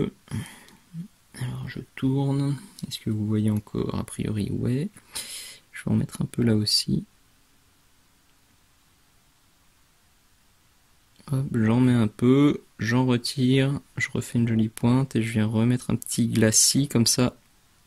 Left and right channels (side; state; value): both; identical; correlation 1.00